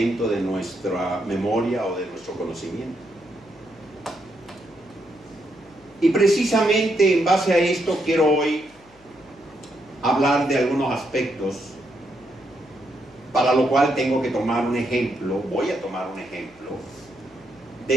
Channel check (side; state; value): left; noise; hum, 29 dB below the sound